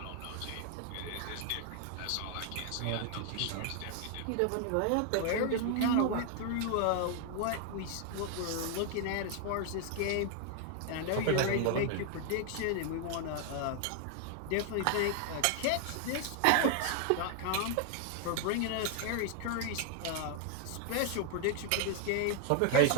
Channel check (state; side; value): different; both; correlation 0.00